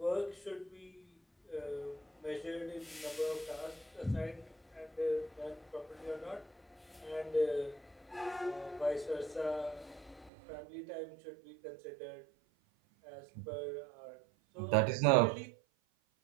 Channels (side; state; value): left; drops out; at 10.3 s